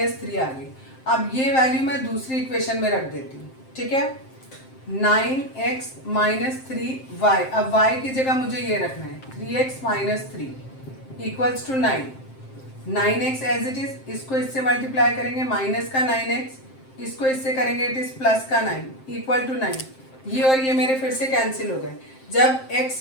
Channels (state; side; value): late; right; 7.6 ms